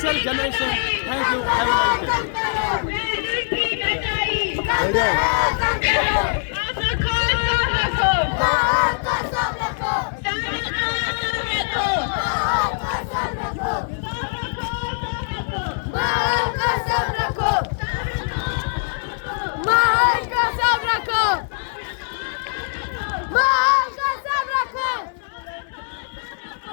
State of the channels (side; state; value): right; silent; digital silence